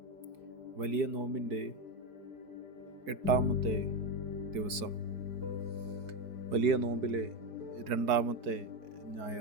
വലിയ നോമ്പിൻ്റെ 8-ാമത്തെ ദിവസം, വലിയ നോമ്പിലെ 2-ാമത്തെ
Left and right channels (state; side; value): late; left; 4.7 ms